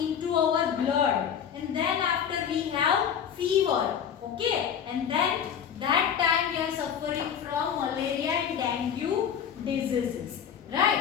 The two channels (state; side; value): quieter; right; 8.3 dB